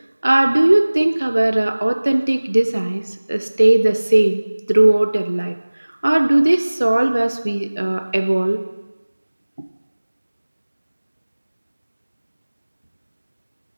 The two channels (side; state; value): both; inverted; correlation -1.00